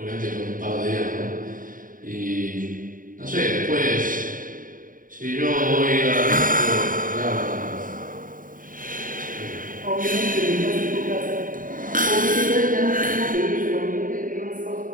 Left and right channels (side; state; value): left; late; 0.39 ms